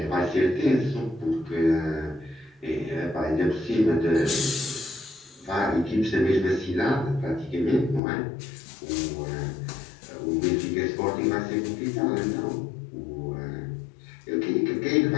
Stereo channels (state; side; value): drops out; right; at 8.0 s